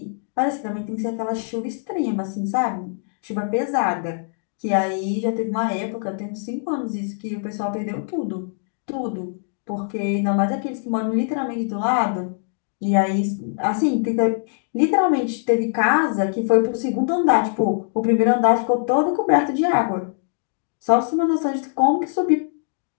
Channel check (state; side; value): silent; right; 64 dB below the other